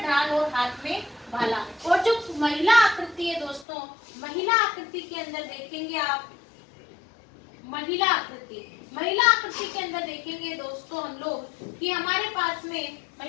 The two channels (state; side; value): drops out; right; at 3.7 s